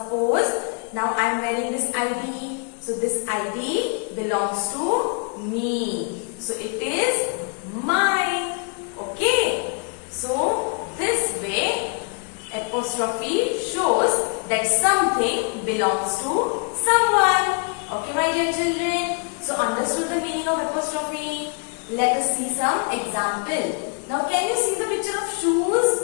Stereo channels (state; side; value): quieter; right; 38.1 dB